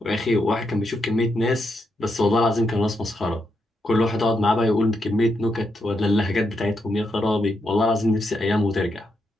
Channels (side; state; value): both; normal; correlation 0.82